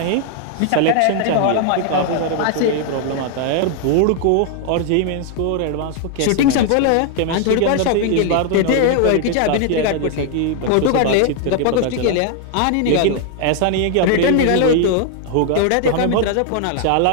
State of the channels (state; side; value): different; both; correlation 0.00